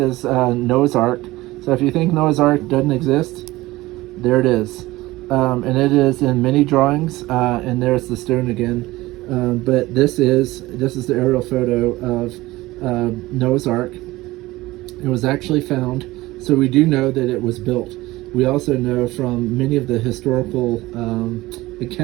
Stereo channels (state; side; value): quieter; left; 18.7 dB